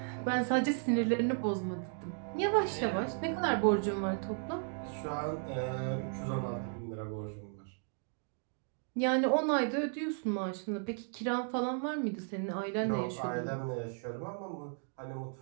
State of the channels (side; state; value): left; silent; 54 dB below the other